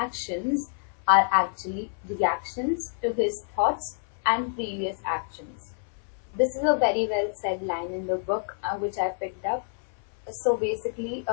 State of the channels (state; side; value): silent; right; 56 dB below the other